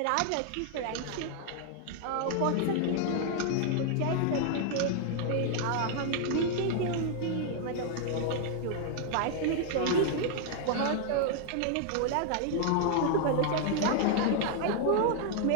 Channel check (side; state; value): both; different; correlation 0.00